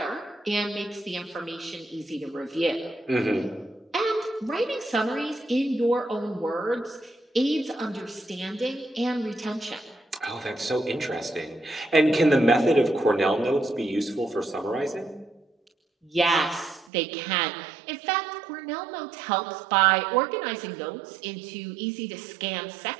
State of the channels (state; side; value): drops out; left; at 16.9 s